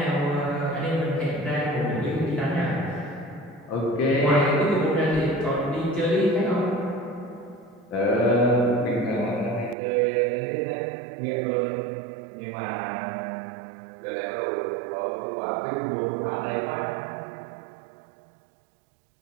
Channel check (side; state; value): left; drops out; at 9.8 s